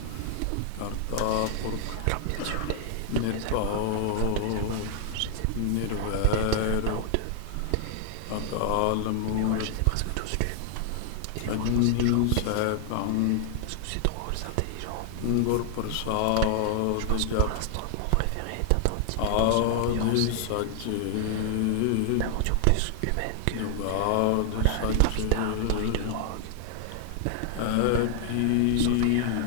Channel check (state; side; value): different; both; correlation 0.00